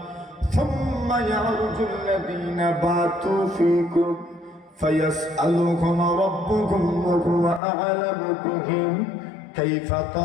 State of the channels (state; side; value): drops out; right; at 7.6 s